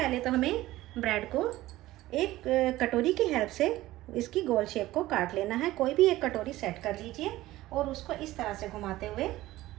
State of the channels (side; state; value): left; quieter; 16.6 dB